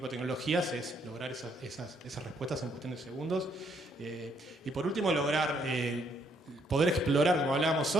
de tecnologías es lograr esas respuestas en cuestión de segundos. Y por último, lograr poder explorar, como hablábamos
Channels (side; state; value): both; normal; correlation 0.70